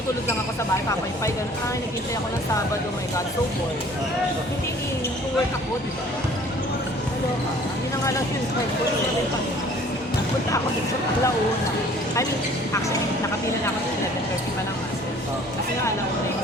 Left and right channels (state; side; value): normal; both; correlation 0.52